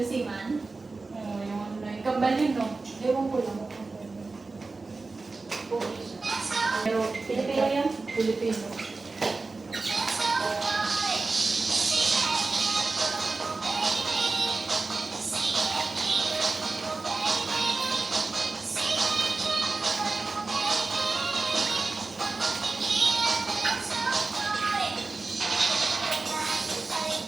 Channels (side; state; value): left; quieter; 3.8 dB